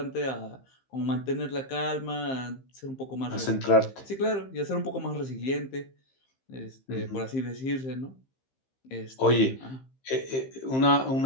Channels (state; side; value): late; right; 15 ms